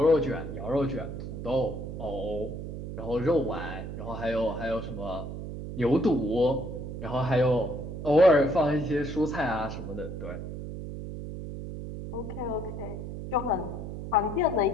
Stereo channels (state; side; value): noise; right; hum, 7 dB below the sound